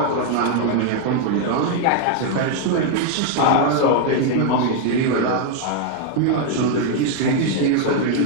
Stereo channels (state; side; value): different; both; correlation 0.00